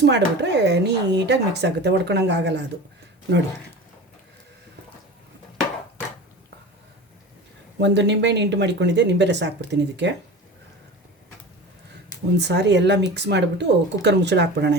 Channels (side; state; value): both; normal; correlation 0.34